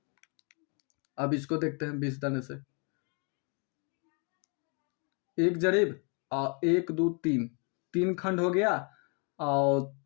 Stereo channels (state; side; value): quieter; right; 36.1 dB